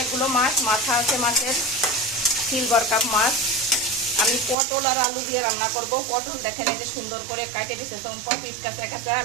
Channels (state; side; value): drops out; left; at 4.5 s